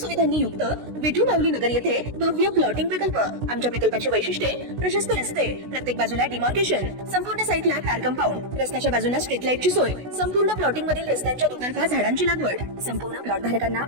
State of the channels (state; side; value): late; left; 16 ms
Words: युक्त विठू माऊली नगर येथे भव्य प्लॉटिंग प्रकल्प। आमच्या प्रकल्पाची वैशिष्ट्ये प्रशस्त रस्ते, प्रत्येक बाजूला डिमार्केशन, संपूर्ण साईटला कार कंपाऊंड, रस्त्याच्या बाजूला स्ट्रीट लाईटची सोय, संपूर्ण प्लॉटिंग मधील रस्त्यांच्या दुतर्फा झाडांची लागवड, संपूर्ण प्लॉट धारकांना